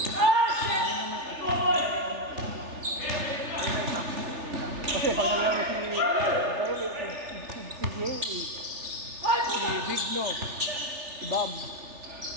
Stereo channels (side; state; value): left; late; 3.4 ms